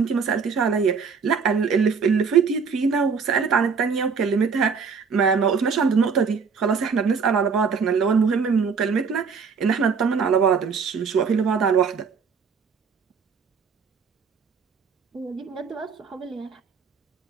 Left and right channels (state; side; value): quieter; left; 5.7 dB